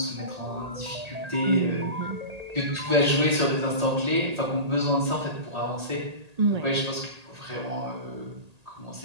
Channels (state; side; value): late; left; 1.8 ms